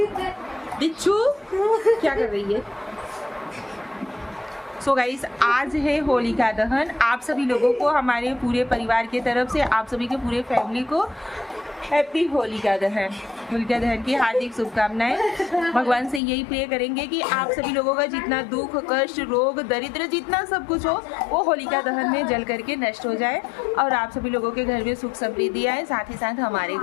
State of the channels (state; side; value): drops out; right; at 16.2 s